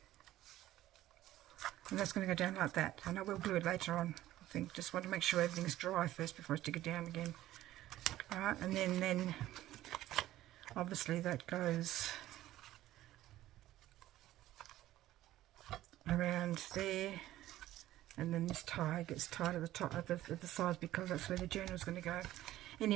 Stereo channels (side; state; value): left; quieter; 14.5 dB